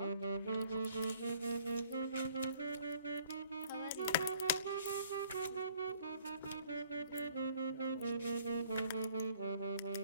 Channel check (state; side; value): inverted; both; correlation -0.59